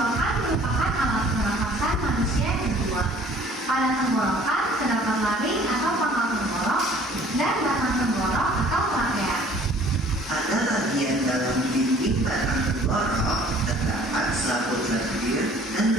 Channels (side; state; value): both; normal; correlation 0.54